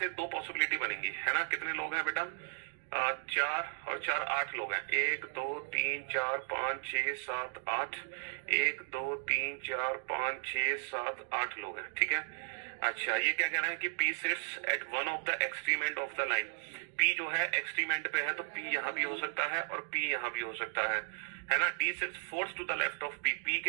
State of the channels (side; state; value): left; silent; 54 dB below the other